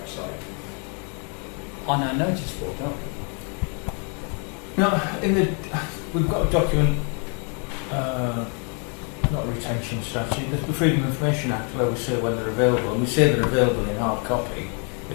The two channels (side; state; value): right; quieter; 36.5 dB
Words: on our notice board, don't we? No, we've got a document, not a retention strategy, there's the Freedom of Information Act where we say when they're available, and we say they're available in hard copy